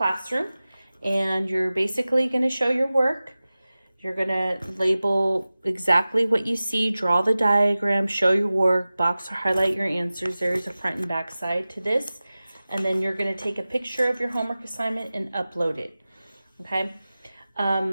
And you're basically going to show your work. You're going to label exactly what you see, draw the diagram, show your work, box or highlight your answers. There's a front and back side to this. And then you're going to take a picture of your homework assignment and upload it. Okay.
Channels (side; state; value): both; inverted; correlation -0.97